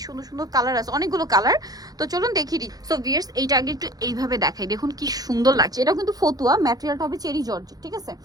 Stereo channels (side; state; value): left; late; 0.18 ms